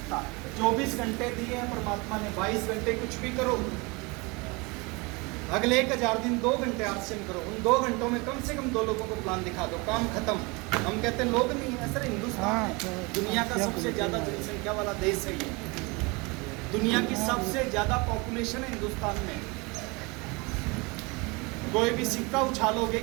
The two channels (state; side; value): quieter; left; 27.0 dB